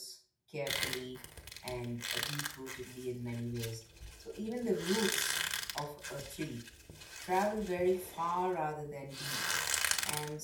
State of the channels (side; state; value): both; identical; correlation 1.00